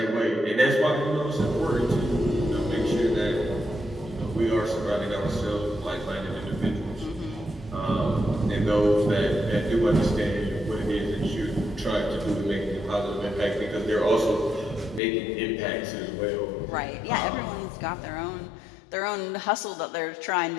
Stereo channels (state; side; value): drops out; right; at 15.0 s